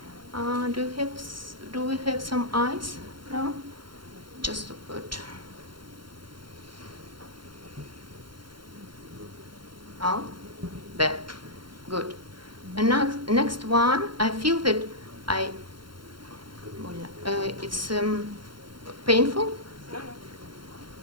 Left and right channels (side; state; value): left; late; 0.73 ms